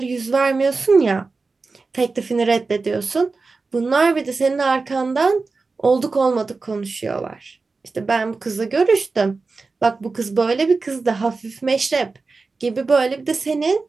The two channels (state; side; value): quieter; left; 4.0 dB